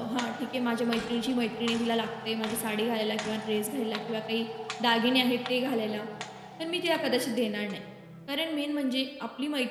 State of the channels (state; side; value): identical; both; correlation 1.00